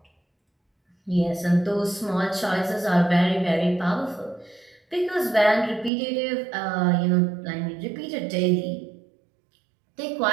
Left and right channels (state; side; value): drops out; left; at 5.9 s